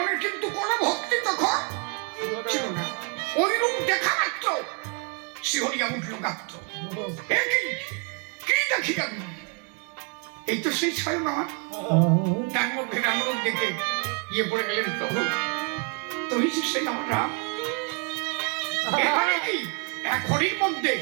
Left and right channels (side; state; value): left; quieter; 38.1 dB